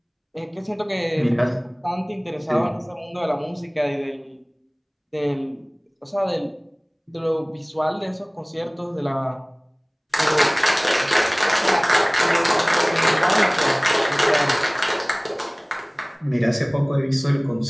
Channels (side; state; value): both; identical; correlation 1.00